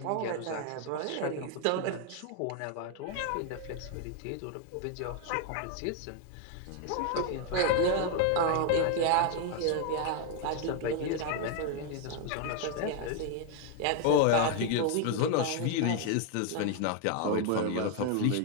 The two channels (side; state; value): both; different; correlation 0.01